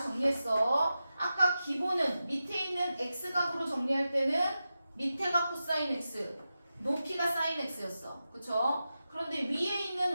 정리했어. 아까 기본은 밑에 있는 x각으로 정리할 때는 밑에가 코사인 x, 높이가 사인 x였어. 그쵸? 그런데 위에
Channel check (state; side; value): inverted; both; correlation -0.92